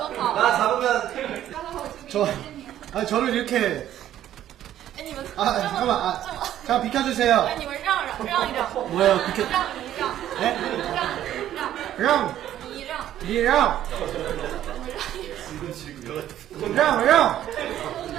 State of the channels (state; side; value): quieter; left; 11.9 dB